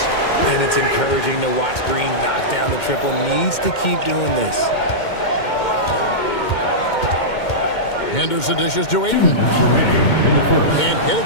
And it's encouraging to watch Green knock down the triple. Needs to keep doing this. Henderson dishes to Ayton. Can't get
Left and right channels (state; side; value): late; right; 2.2 ms